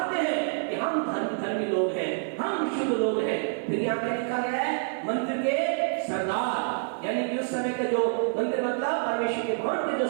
हैं कि हम धर्मी लोग हैं, हम शुद्ध लोग हैं। फिर यहाँ पे लिखा गया है मंदिर के सरदार, यानी कि उस समय के जो मंदिर मतलब परमेश्वर के भवन के जो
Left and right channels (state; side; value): silent; left; digital silence